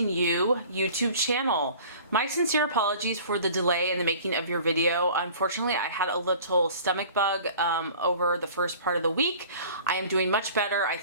You YouTube channel. My sincere apologies for the delay in the making of your video. Unfortunately, I had a little stomach bug over the first part of the week. I am doing much better. I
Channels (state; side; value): inverted; both; correlation -0.46